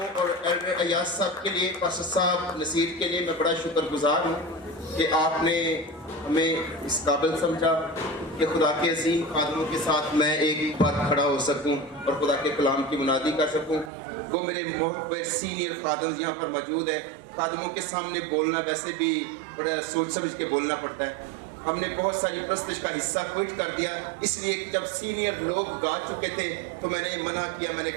और एल्डर अयाज साहब के लिए, पास्टर साहब नसीर के लिए मैं बड़ा शुक्रगुजार हूँ कि आपने हमें इस काबिल समझा कि खुदा के अजीम खादमों के साथ मैं एक बार खड़ा हो सकूँ और खुदा के कलाम की मुनादी कर सकूँ। वो मेरे बहुत सीनियर खादम यहाँ पर मौजूद है। खादमों के सामने बोलना वैसे भी बड़ा सोच समझ के बोलना पड़ता है। हमने बहुत सारी प्रस्तुति का हिस्सा क्विट कर दिया, इसलिए जब सीनियर लोग गा चुके थे तो मैंने मना किया। मैंने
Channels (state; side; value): drops out; left; at 13.9 s